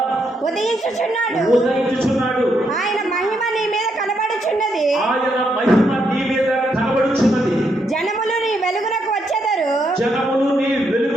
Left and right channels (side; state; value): both; normal; correlation 0.78